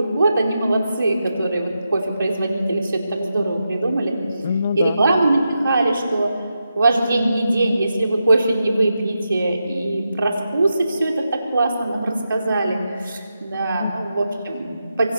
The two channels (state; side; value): inverted; both; correlation -0.87